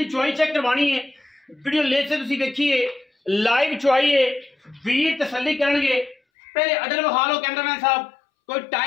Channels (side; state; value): right; drops out; at 6.2 s